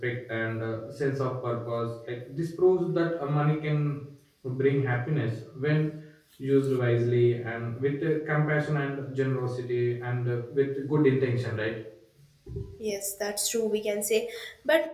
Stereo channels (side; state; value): both; identical; correlation 1.00